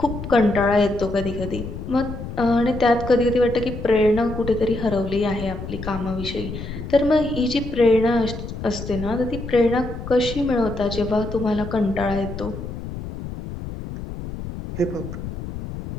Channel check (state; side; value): noise; left; rumble, 8 dB below the sound